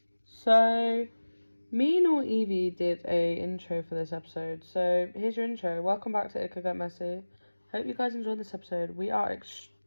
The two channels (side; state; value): both; inverted; correlation -1.00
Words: So, me nor Evie did a intro for this episode. So, here's your intro. Welcome back to It Could Get Messy. Hope you guys enjoyed this episode. We are